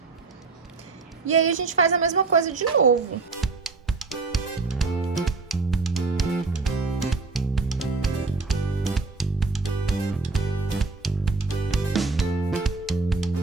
E aí a gente faz a mesma coisa de novo.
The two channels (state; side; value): quieter; left; 4.0 dB